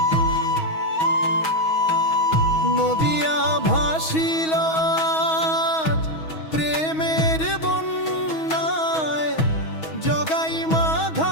নদিয়া ভাসিল প্রেমের বন্যায়, জগাই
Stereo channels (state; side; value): late; right; 6.3 ms